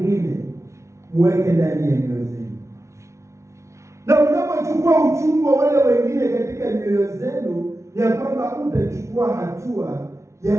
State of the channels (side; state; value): left; late; 0.14 ms